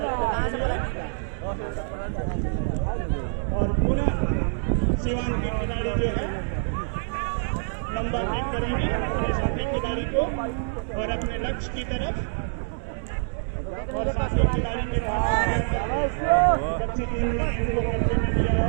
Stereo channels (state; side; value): silent; left; digital silence